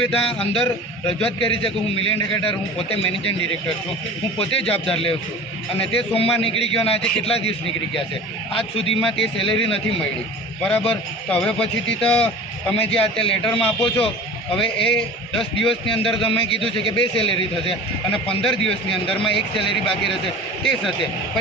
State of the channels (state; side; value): normal; both; correlation 0.38